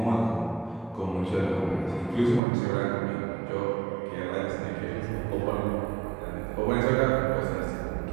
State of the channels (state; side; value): drops out; left; at 2.4 s